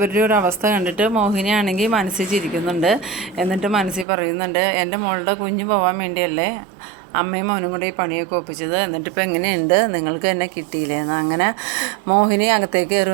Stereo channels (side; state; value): left; drops out; at 4.0 s